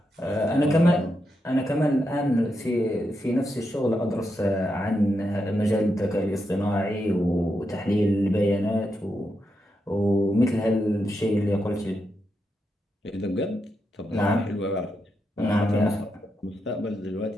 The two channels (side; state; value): both; normal; correlation 0.84